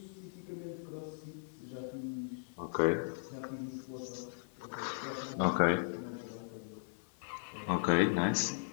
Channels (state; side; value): silent; right; 53 dB below the other